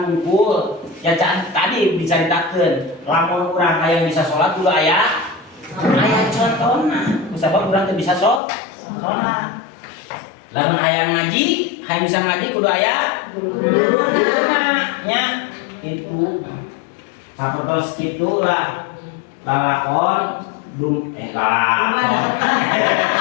unggul ya tadi diceritakeun lamun urang hayang bisa sholat kudu aya contona kusabab urang teu bisa sholat lamun hayang ngaji hayang bisa ngaji kudu aya guruna nya kitu sapertos kitu lah lalakon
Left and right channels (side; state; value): right; drops out; at 8.4 s